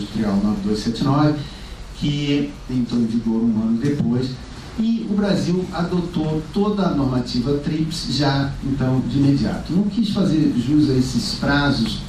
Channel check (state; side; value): identical; both; correlation 1.00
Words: 9279, que entrou em vigor 1 ano depois, e o Brasil adotou toda a normativa TRIPS já, então, de imediato. Não quis fazer jus a esses prazos